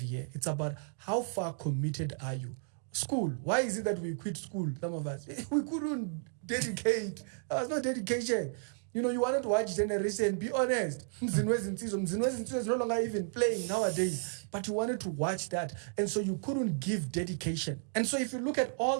it's about how far committed are you? School, why is it that we quit school, some of us? We couldn't dedicate. There was no dedication. You know, you wanted to watch Generation, be honest. Mzinwezi is no longer even playing nowadays. But you wanted to watch that. And so you couldn't give dedication. And so if you look at all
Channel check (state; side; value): silent; left; 56 dB below the other